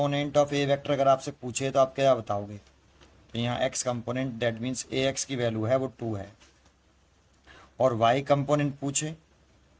of A vector अगर आपसे पूछे तो आप क्या बताओगे, तो यहाँ x component that means A x की वैल्यू है वो 2 है। और वाई कंपोनेंट पूछे,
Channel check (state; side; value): identical; both; correlation 1.00